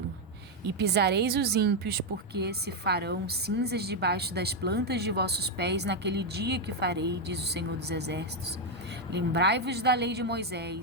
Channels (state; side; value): normal; both; correlation 0.03